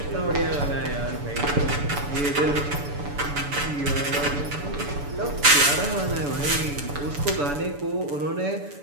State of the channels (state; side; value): late; left; 6.9 ms